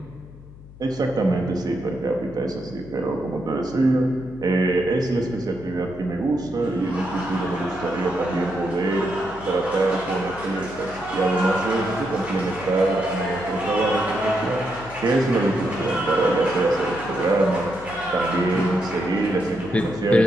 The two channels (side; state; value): left; noise; hum, 19 dB below the sound